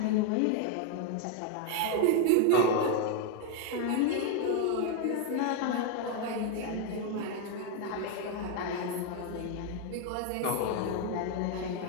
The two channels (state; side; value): different; both; correlation 0.01